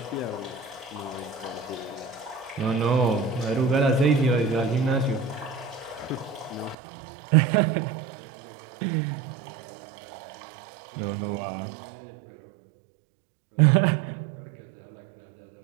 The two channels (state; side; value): drops out; left; at 6.8 s